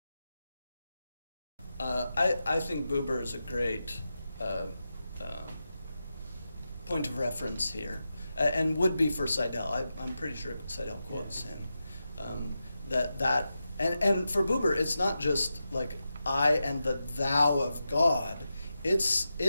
I think Buber is a great point of reference here, and would be for Seidel. I'm pretty sure Seidel quotes him. And for Buber, it's not just like I and the thou of God.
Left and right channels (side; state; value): both; inverted; correlation -0.90